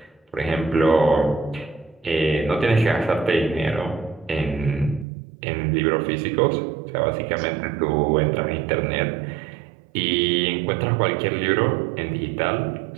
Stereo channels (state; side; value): drops out; left; at 5.1 s